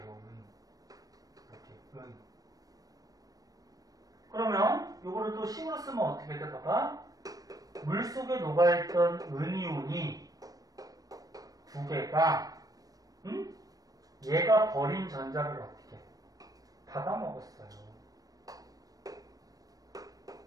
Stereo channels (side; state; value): left; late; 0.18 ms